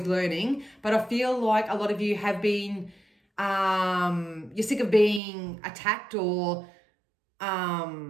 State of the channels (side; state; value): left; drops out; at 5.2 s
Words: learning. But I feel like a lot of you have been, you're sick of being attacked or, I